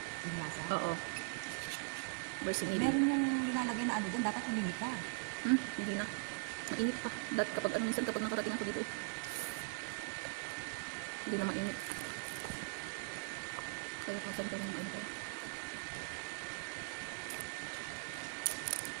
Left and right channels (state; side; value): silent; left; digital silence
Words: Yung lasa? Oo. Versing Meron yung nilalagay na ano doon, dapat humingi ka. Hindi na. Mainit pa. Kapag minsan kapag nakarating ako dito eh. Hindi na mainit. Kaya kasan pa rin na tayo.